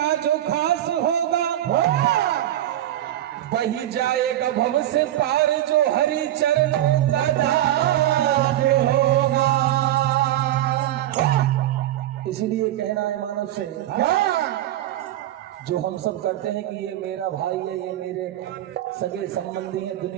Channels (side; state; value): left; quieter; 13.2 dB